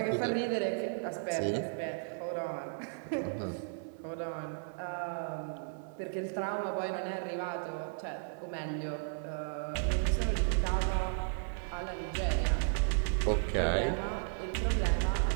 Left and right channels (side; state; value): left; silent; digital silence